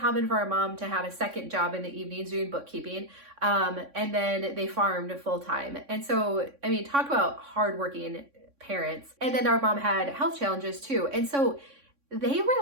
for our mom to have a second job in the evenings doing bookkeeping. And then they farmed full time. And so, I mean, talk about hardworking parents. And then our mom had health challenges too. And so they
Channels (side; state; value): left; late; 3.6 ms